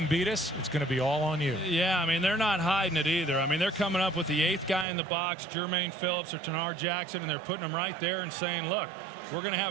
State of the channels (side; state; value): left; drops out; at 4.9 s